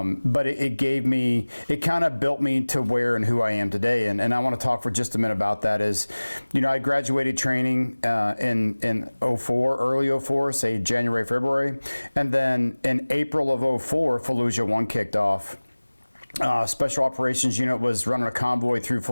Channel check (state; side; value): inverted; both; correlation -1.00